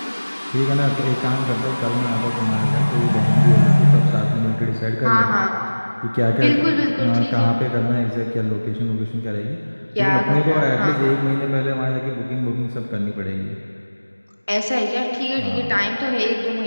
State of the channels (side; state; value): both; inverted; correlation -1.00